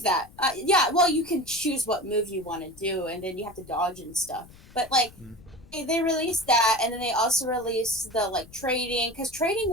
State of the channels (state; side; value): noise; left; rumble, 22 dB below the sound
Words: that. Yeah, well, you can choose what move you want to do, and then you have to dodge and stuff. But like, Mm. they released that, and then they also released the like trading, because trading